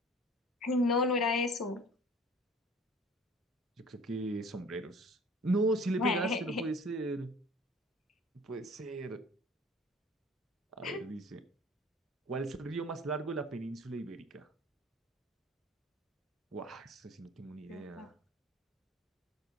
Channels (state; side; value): normal; both; correlation 0.47